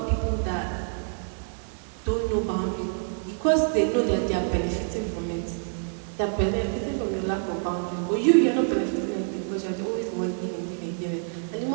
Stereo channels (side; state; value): left; silent; digital silence